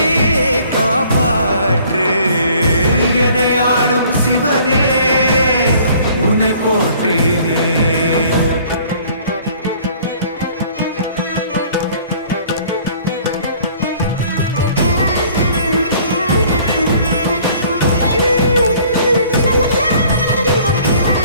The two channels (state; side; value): inverted; both; correlation -0.55